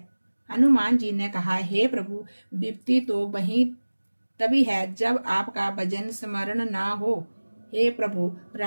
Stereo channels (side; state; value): both; inverted; correlation -1.00